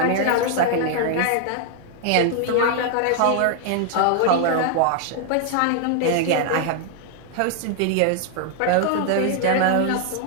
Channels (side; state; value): both; different; correlation 0.00